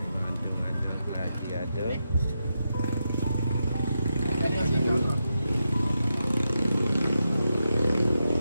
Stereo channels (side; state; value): both; inverted; correlation -0.86